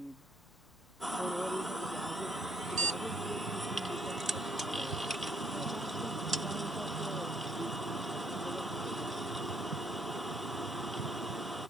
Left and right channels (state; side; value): normal; both; correlation 0.68